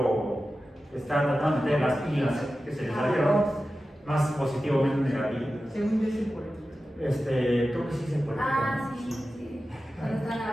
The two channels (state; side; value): normal; both; correlation 0.93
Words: que está tratando de meter las pilas que se le salieron, más positivo, menos negativo. Según yo, sí, por creo que sí se puede. Sí. Cuando está la